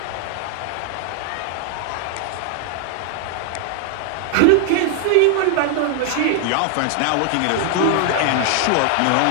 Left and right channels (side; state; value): both; different; correlation 0.00